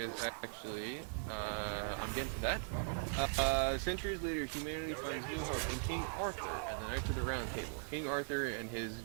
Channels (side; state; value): left; silent; digital silence